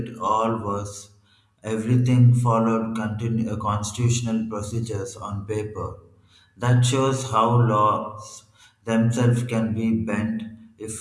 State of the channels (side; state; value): both; identical; correlation 1.00